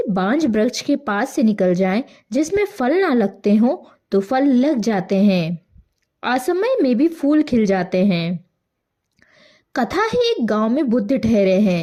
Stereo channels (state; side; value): identical; both; correlation 1.00